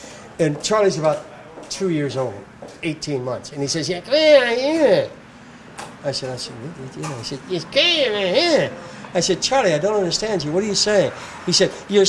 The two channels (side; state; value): both; identical; correlation 1.00